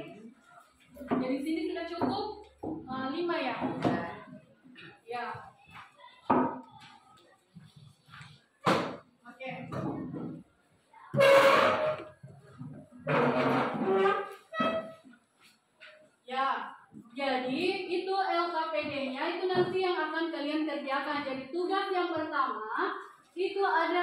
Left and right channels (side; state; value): both; identical; correlation 1.00